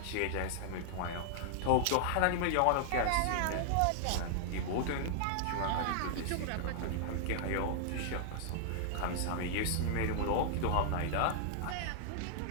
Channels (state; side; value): different; both; correlation -0.01